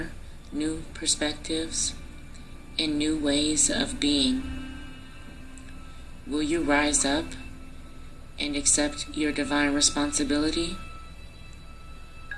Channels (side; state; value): both; identical; correlation 1.00